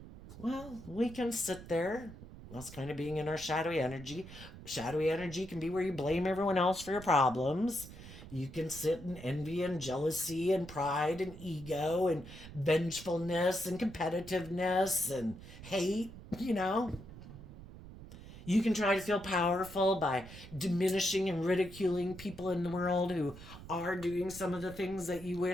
Well, we can sit there. That's kind of being in our shadowy energy. Shadowy energy can be where you blame everyone else for your problems. You can sit in envy and jealousy and pride and ego and vengefulness and competitiveness and hate, You can try to feel powerful by diminishing and ridiculing people in the world who are doing some of the things that you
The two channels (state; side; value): noise; right; rumble, 15 dB below the sound